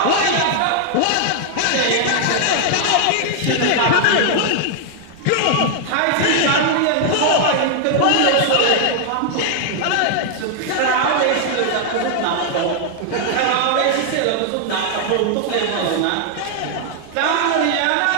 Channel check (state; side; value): different; both; correlation 0.00